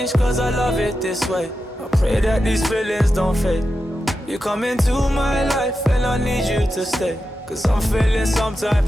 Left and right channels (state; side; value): normal; both; correlation 0.90